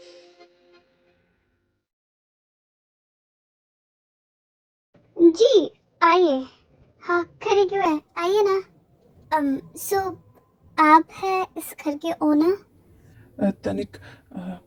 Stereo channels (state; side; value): identical; both; correlation 1.00